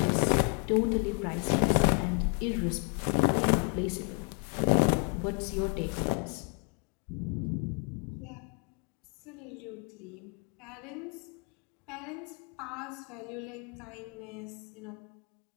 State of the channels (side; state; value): right; quieter; 35.3 dB